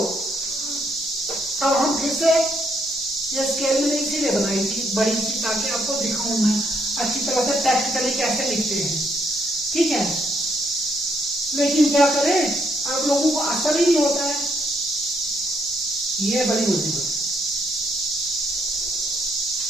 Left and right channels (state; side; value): normal; both; correlation 0.73